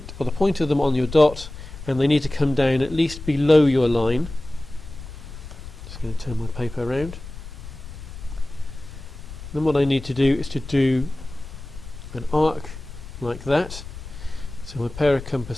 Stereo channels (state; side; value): noise; left; rumble, 13 dB below the sound